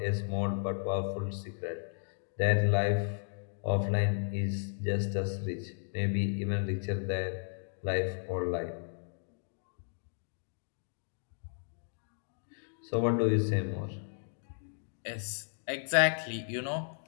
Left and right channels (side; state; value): right; silent; digital silence